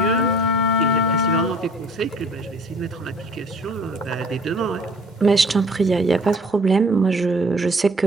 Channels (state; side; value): normal; both; correlation 0.53